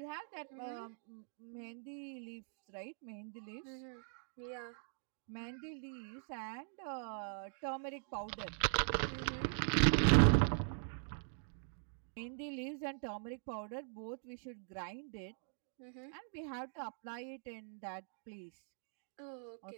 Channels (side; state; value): left; silent; digital silence